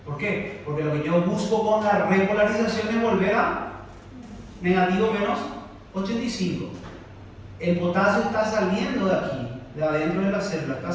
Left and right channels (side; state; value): both; identical; correlation 1.00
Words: ¿Por qué? Porque lo que yo busco con la repolarización es volver a negativo menos 85. El potasio está saliendo de aquí, de adentro de la célula, está